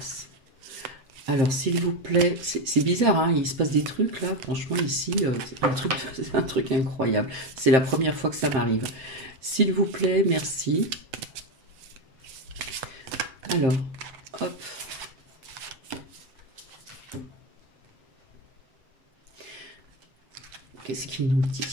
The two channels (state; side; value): late; left; 7.7 ms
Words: Alors, s'il vous plaît, c'est bizarre, hein, il se passe des trucs là, franchement, ici, c'est un truc incroyable. C'est la première fois que ça m'arrive. S'il vous plaît, merci. Alors, hop. Qu'est-ce qu'il nous